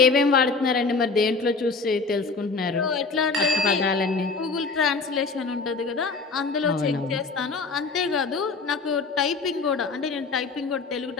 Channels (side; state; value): right; quieter; 4.3 dB